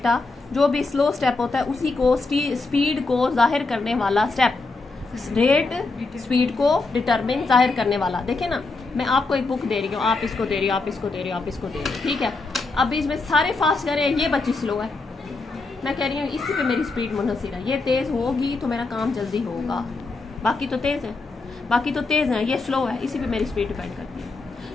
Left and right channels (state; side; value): quieter; right; 3.6 dB